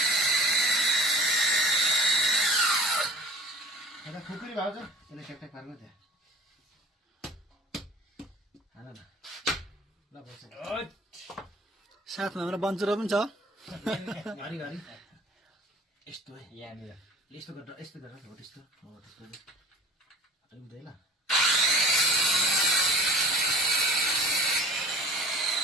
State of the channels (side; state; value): both; normal; correlation 0.44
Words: एउटा खुकुरी भाउ छ यसले ट्याकट्याक पार्नु त्यहाँ हाल न ल बस। साथमा हाम्रो बन्चुरो पनि छ। घरि घरि यस्तो है यहाँनिर यस्तो गरेर यस्तो गरेर हो त्यस्तो हो त्यस्तो हुँदै ल।